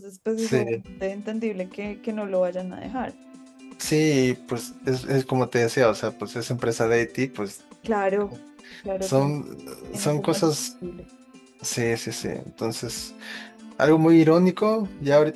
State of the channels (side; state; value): both; identical; correlation 1.00